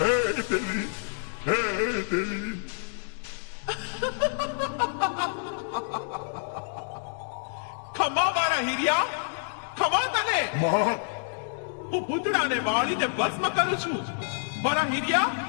દેવી હે દેવી ખમા મારા હીરિયા, ખમા તને. માં હું ભૂતડાને વાળીને ભસ્મ કરું છું. મારા હીરિયા,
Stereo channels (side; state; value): right; silent; digital silence